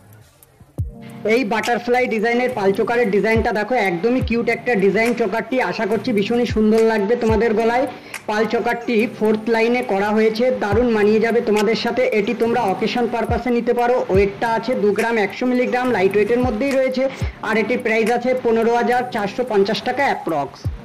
এই বাটারফ্লাই ডিজাইনের পাল চোকারের ডিজাইনটা দেখো, একদমই কিউট একটা ডিজাইন। চোকারটি আশা করছি ভীষণই সুন্দর লাগবে তোমাদের গলায়। পাল চোকারটি 4th লাইনে করা হয়েছে, দারুণ মানিয়ে যাবে তোমাদের সাথে। এটি তোমরা অকেশন পারপাসে নিতে পারো। ওয়েটটা আছে 2 গ্রাম 100 মিলিগ্রাম, লাইট ওয়েটের মধ্যেই রয়েছে। আর এটির প্রাইস আছে 15,450 টাকা অ্যাপ্রক্স।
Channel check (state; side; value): identical; both; correlation 1.00